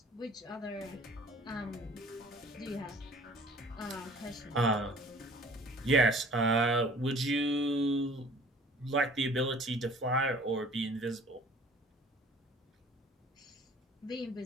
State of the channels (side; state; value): both; normal; correlation 0.50